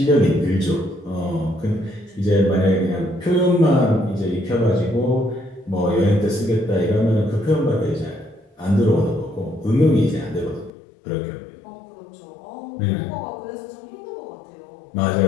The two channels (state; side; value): drops out; right; at 10.7 s